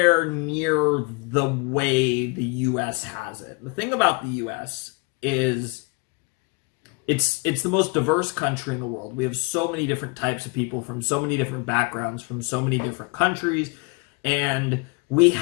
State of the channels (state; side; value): quieter; right; 28.7 dB